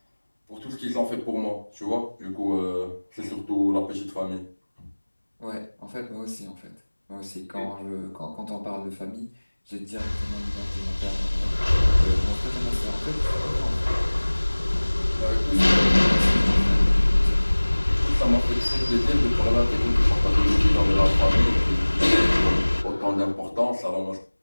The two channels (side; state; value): both; inverted; correlation -1.00